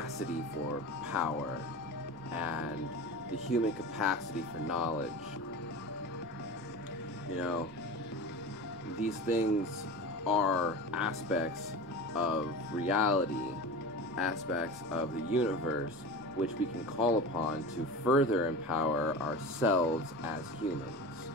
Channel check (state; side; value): normal; both; correlation 0.31